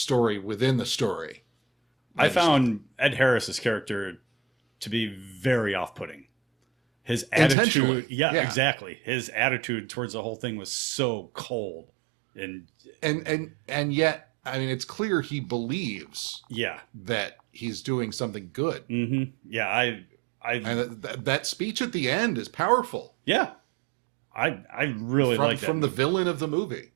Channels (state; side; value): drops out; left; at 7.6 s